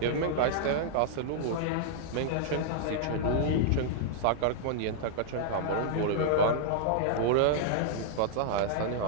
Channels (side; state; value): both; different; correlation -0.01